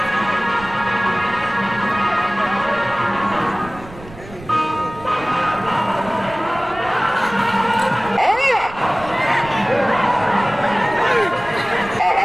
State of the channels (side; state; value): right; noise; rumble, 17 dB below the sound